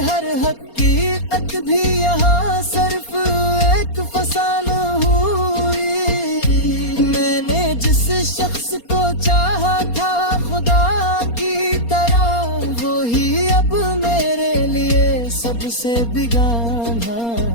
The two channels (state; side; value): late; right; 4.3 ms